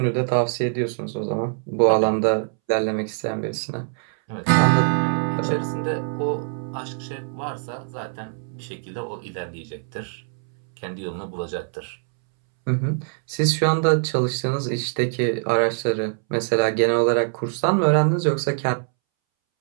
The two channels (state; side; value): silent; left; 63 dB below the other